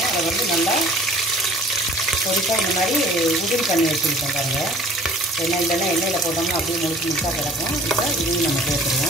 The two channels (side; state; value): both; normal; correlation 0.50